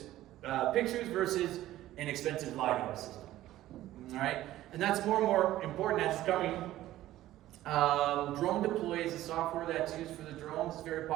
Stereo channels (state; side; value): quieter; left; 14.6 dB